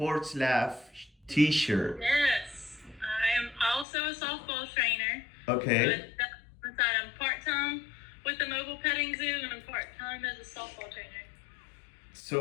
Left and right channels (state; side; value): drops out; right; at 3.9 s